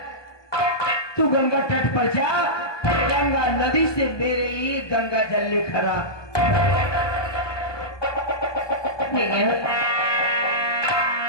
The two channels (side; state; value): right; late; 1.2 ms